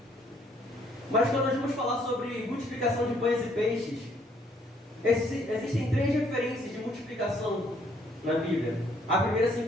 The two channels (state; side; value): normal; both; correlation 0.66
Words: Mas quando nós vamos falar sobre multiplicação de pães e peixes, existem 3 referências de multiplicação na Bíblia. A primeira se